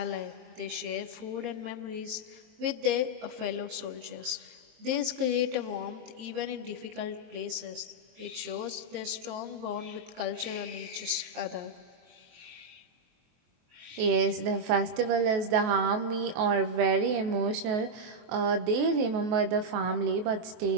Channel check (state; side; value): late; left; 23 ms